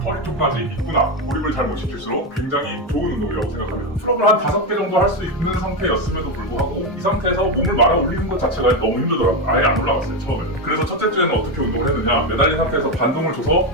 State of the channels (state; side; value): normal; both; correlation 0.11